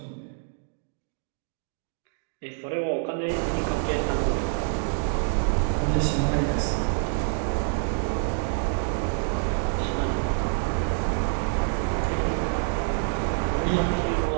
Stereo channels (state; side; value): silent; left; 57 dB below the other